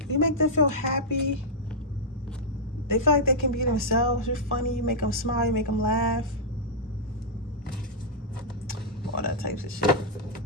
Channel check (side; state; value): both; normal; correlation -0.08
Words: You make them feel happy. They feel like they can be themselves. You're funny. You make them smile. You make them laugh. all that types of shit.